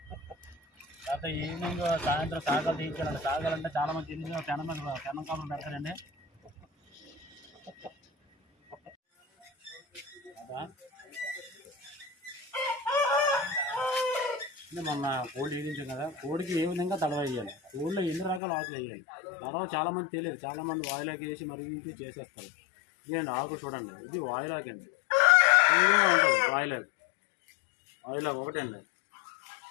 తర్వాత ఈవినింగ్ సాయంత్రం సాగలు తీయించాలండి. సాగాలంటే చాలా మంది తెలిసి పెనం కాపులు పెడతారండి. మొన్న కోడి వేయించాం కదా, కోడికి ఏ విధంగా తడవ వేయాలి, కోడిలో ఎన్ని రకాల ఆకులు వేయాలి తడవ చాలామంది తెలియదు. చాలామంది వాయిలాకి వేసి మరిగించి చేసేస్తారు. ఇదండి ఆకు చూడండి, ఇది వాయిలాకి అండి. ఈ విధంగా ఉంటుంది వాయిలాకి. వాయిలాకి ఒకటే అండి.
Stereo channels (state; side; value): drops out; right; at 18.4 s